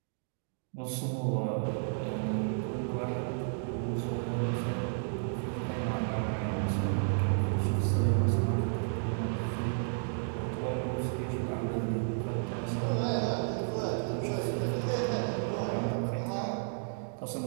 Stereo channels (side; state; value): left; silent; digital silence